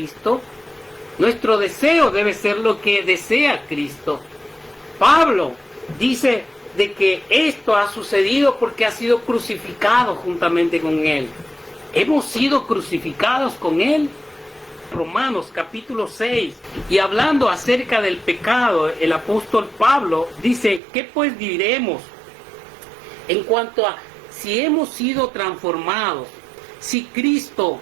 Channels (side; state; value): left; drops out; at 20.8 s